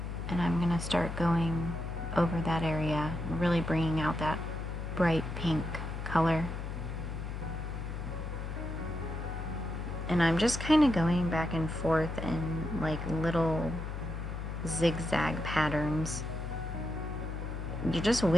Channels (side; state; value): left; noise; hum, 5 dB below the sound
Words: and I'm going to start going over that area, really bringing out that bright pink color. And I'm just kind of going back and forth in like little zigzag patterns. You're just